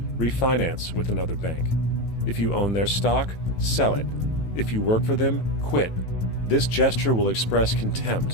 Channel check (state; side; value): late; right; 18 ms